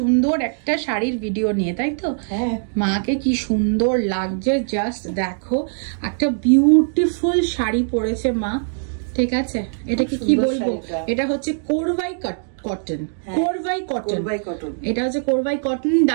একটা শাড়ির ভিডিও নিয়ে, তাই তো? মাকে কি সুন্দর লাগছে, জাস্ট দেখো। একটা বিউটিফুল শাড়ি পরেছে মা, ঠিক আছে? এটাকে কি বলবো, এটা হচ্ছে কোরভাই কটন, কোরভাই কটন। এটা হচ্ছে কোরভাই কটন,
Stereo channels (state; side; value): silent; left; digital silence